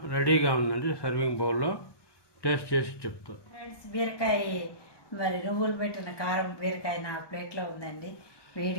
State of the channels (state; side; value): late; right; 1.2 ms